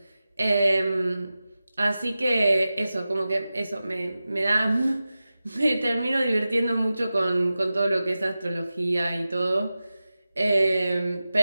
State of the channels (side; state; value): both; inverted; correlation -0.95